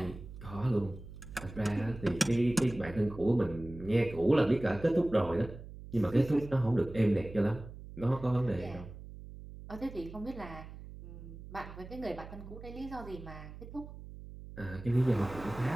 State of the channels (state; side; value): noise; right; hum, 14 dB below the sound